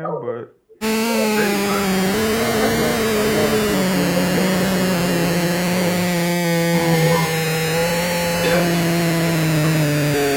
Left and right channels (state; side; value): identical; both; correlation 1.00